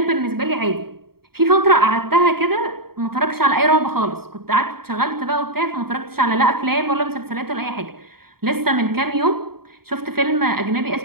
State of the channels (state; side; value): late; left; 0.95 ms